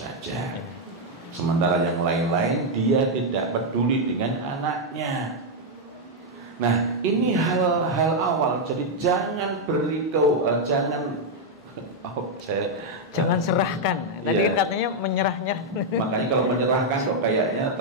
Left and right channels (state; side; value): normal; both; correlation -0.01